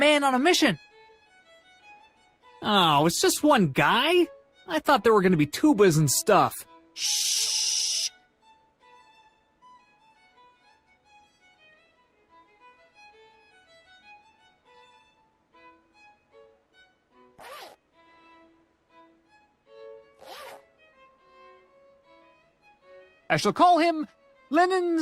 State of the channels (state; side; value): identical; both; correlation 1.00